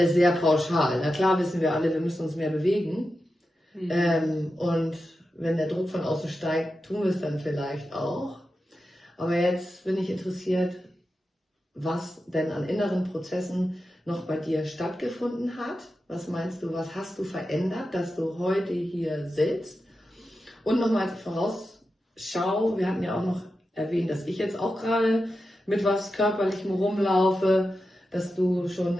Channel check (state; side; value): normal; both; correlation 0.91